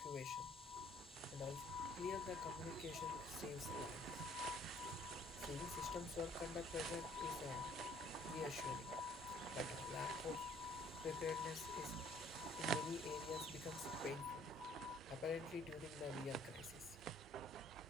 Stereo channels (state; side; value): normal; both; correlation 0.59